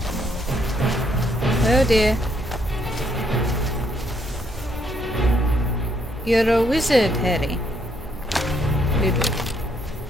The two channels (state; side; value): normal; both; correlation 0.72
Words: Oh dear. You're a wizard, Harry. Little.